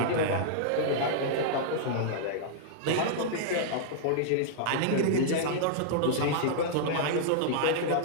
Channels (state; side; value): different; both; correlation -0.02